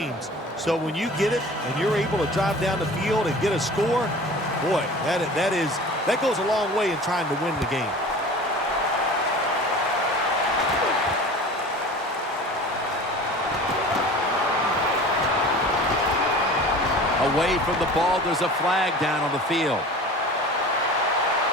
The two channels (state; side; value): normal; both; correlation 0.40